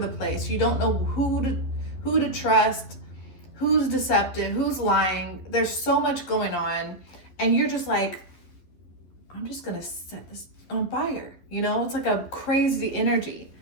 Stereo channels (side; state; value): right; late; 11 ms